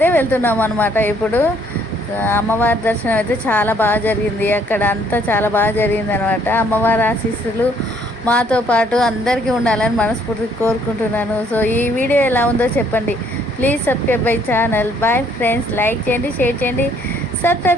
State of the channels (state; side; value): normal; both; correlation 0.64